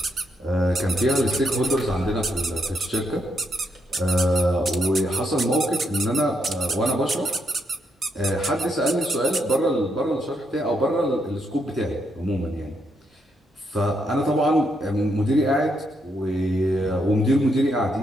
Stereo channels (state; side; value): normal; both; correlation 0.78